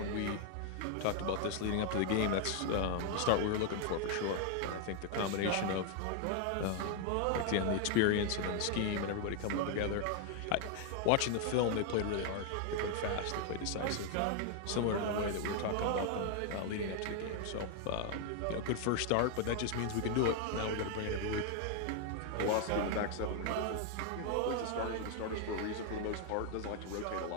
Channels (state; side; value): different; both; correlation 0.00